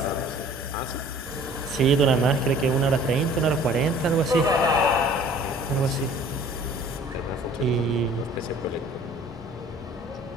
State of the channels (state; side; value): normal; both; correlation 0.51